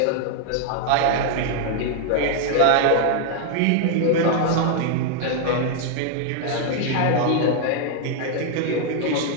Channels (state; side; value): different; both; correlation 0.00